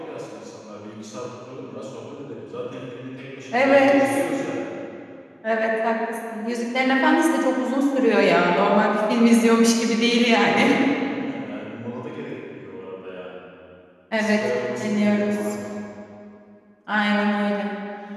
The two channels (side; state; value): both; identical; correlation 1.00